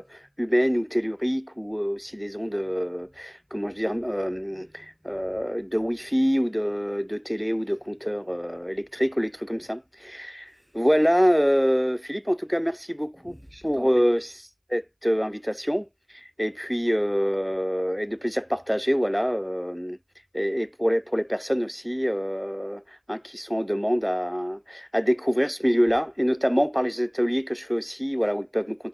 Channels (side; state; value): both; identical; correlation 1.00